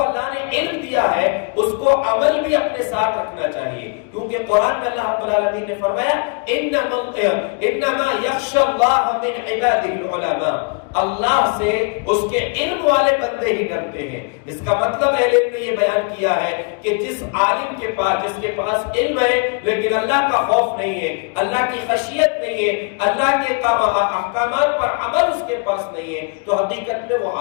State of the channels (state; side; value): quieter; right; 37.0 dB